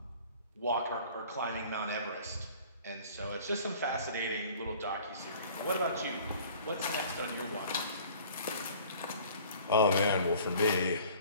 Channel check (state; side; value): inverted; both; correlation -0.49